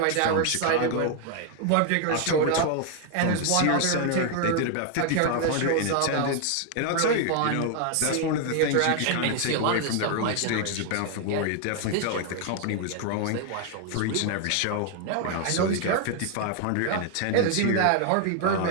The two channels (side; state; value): both; different; correlation 0.00